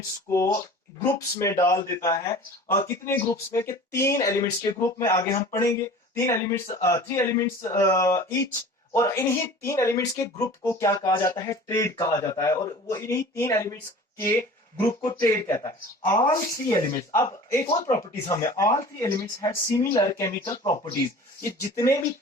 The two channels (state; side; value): normal; both; correlation 0.42